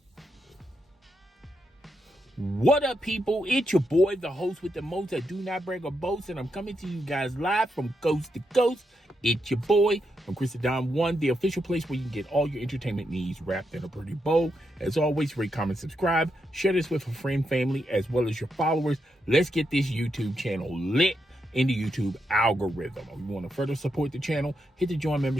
What up, people? It's your boy, the host with the most. I do not brag or boast, and I'm coming to you guys live from coast to coast. It's your boy from Christendom One, the official place where you can get all your entertainment needs wrapped in a pretty bow. As always, rate, comment, subscribe, share this with a friend, family, as well as your followers. Let's get this YouTube channel lit in the YouTube algorithm. If you want to further support the channel, hit the join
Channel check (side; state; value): both; normal; correlation 0.83